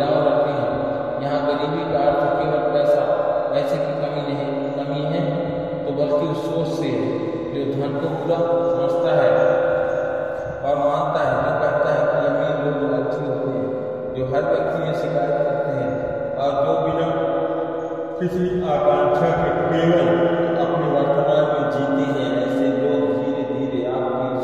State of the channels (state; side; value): identical; both; correlation 1.00